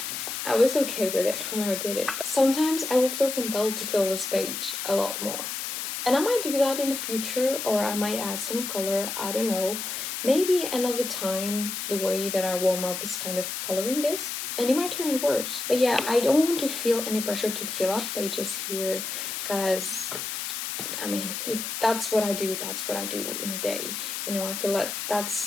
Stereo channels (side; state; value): left; noise; hiss, 4 dB below the sound